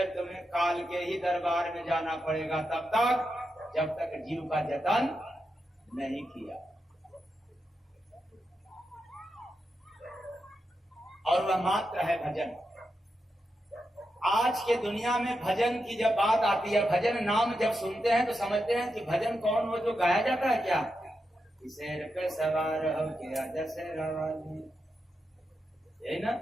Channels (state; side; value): normal; both; correlation 0.87